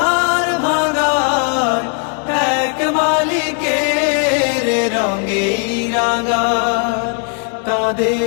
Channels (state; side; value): quieter; right; 36.8 dB